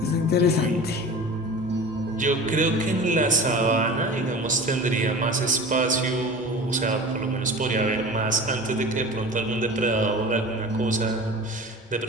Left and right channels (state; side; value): normal; both; correlation 0.36